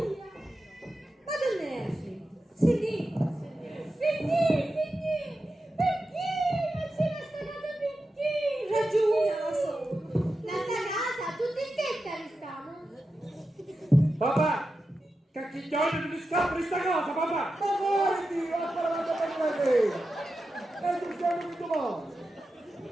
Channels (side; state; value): both; normal; correlation 0.91